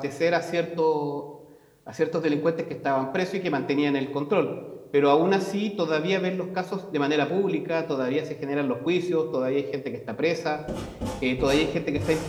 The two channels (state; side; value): identical; both; correlation 1.00